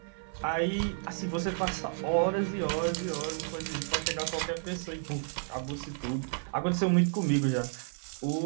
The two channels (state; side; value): silent; left; 57 dB below the other